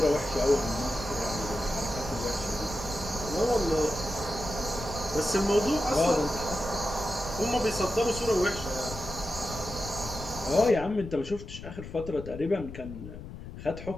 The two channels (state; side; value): noise; left; rumble, 12 dB below the sound